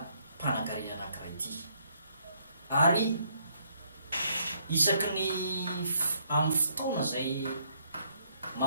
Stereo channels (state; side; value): inverted; both; correlation -0.70